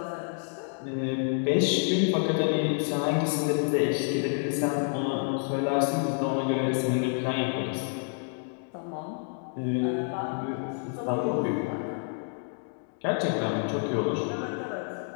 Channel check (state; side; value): silent; right; 59 dB below the other